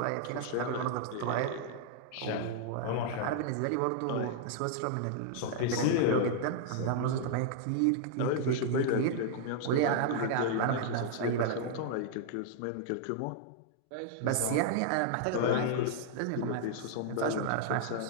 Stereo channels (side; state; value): both; different; correlation -0.01